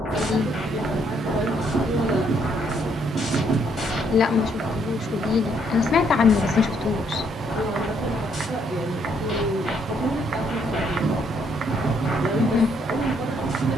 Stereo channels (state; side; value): normal; both; correlation 0.70